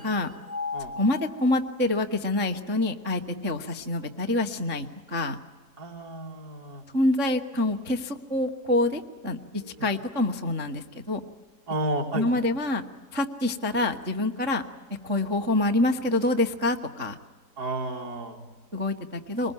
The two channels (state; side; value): late; left; 3.7 ms